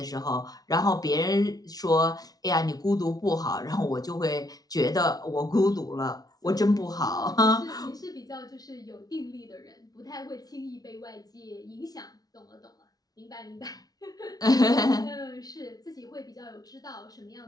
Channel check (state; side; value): late; right; 0.19 ms